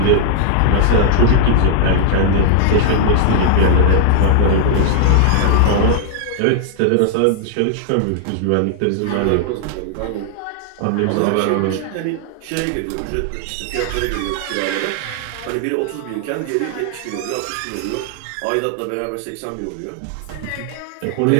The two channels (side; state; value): both; different; correlation 0.00